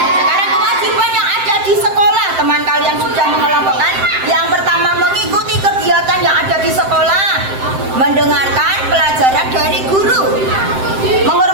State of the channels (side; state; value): left; late; 7.7 ms